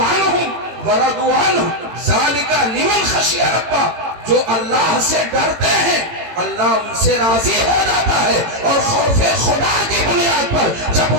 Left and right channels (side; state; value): left; late; 18 ms